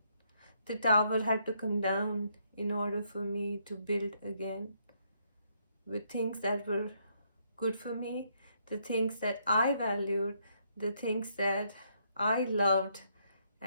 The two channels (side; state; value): both; inverted; correlation -0.73